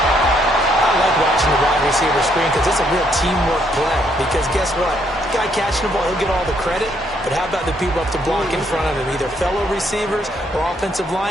I like watching the wide receiver screen because it's a real teamwork play. Because guess what? The guy catching the ball, he'll get all the credit. But how about the people up to block in front of him, either fellow receivers or offensive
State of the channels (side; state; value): both; normal; correlation 0.71